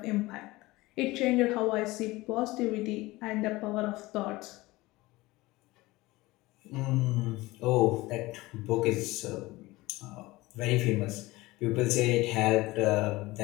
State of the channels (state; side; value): quieter; right; 20.1 dB